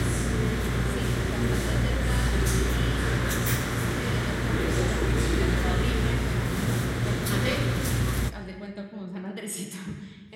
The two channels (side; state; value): both; identical; correlation 1.00